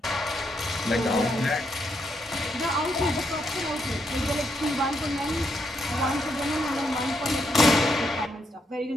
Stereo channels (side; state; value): both; normal; correlation 0.78